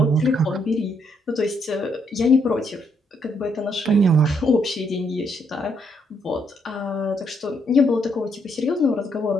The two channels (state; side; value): normal; both; correlation 0.73